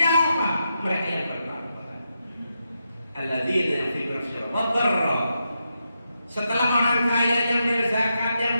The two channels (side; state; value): both; inverted; correlation -0.86